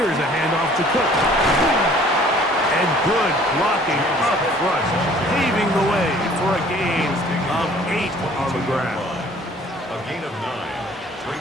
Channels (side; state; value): both; normal; correlation 0.54